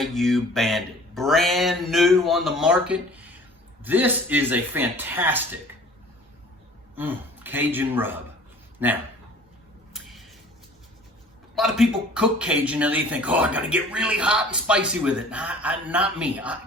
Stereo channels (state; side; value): normal; both; correlation 0.48